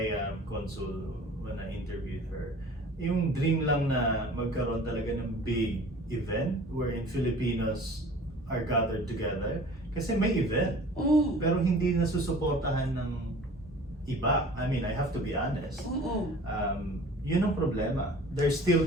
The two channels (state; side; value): normal; both; correlation 0.45